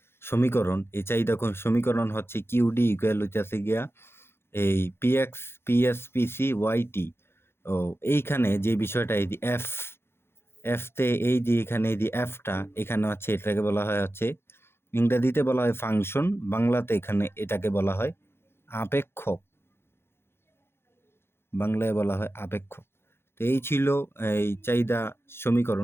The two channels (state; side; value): late; right; 0.12 ms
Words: সমীকরণ। এই চাহিদা সমীকরণ হচ্ছে কিউডি ইকুয়াল হচ্ছে গিয়া এই পিএসপিসি ওয়াইটি। ও এইখানে যে বিষয়টা এই এফতে এই যে এখানে এই যে এফটা এখানে হচ্ছে এটাকে বলা হয় হচ্ছে ইংরেজিতে বলা হয় ফাংশন, বাংলাতে এখানে এটাকে বলা হয় আপেক্ষক। বাংলায় বলা হয় আপেক্ষক। তো এই ছিল এই চাহিদা